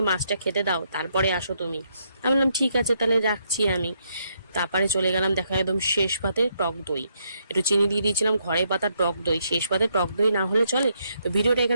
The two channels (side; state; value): both; inverted; correlation -0.75